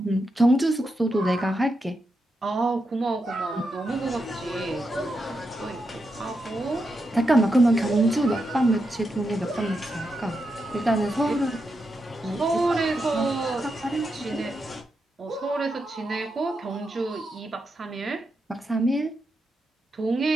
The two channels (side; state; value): both; normal; correlation 0.85